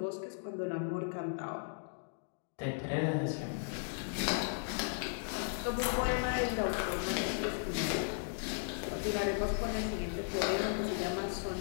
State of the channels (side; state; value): right; silent; digital silence